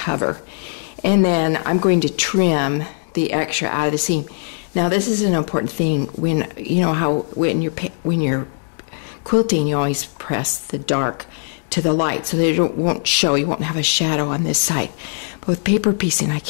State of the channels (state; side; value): silent; right; digital silence